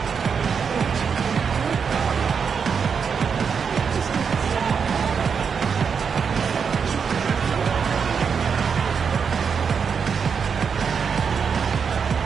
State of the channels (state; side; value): quieter; left; 6.3 dB